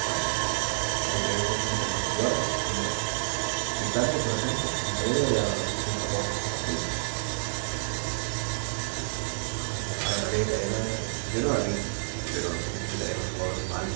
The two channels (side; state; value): left; silent; digital silence